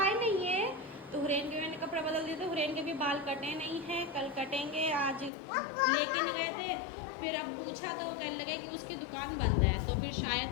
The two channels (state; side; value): drops out; right; at 5.3 s